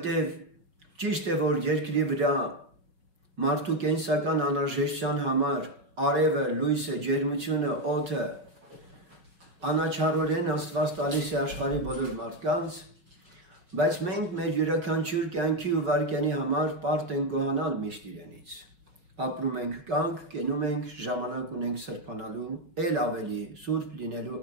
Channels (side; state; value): left; late; 5.2 ms